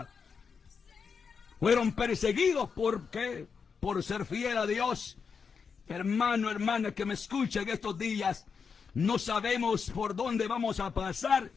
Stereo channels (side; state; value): right; quieter; 5.8 dB